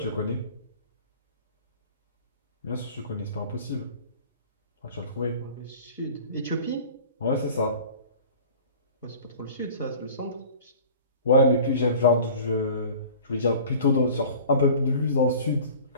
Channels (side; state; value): both; inverted; correlation -0.43